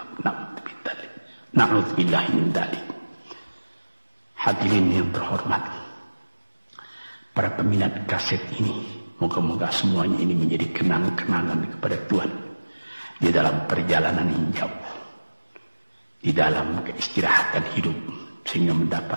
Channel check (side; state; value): both; inverted; correlation -1.00